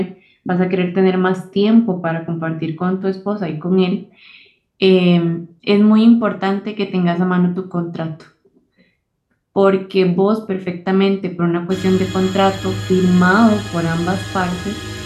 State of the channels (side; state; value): both; identical; correlation 1.00